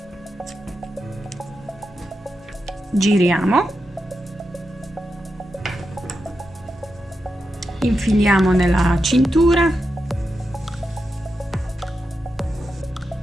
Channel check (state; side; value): normal; both; correlation 0.88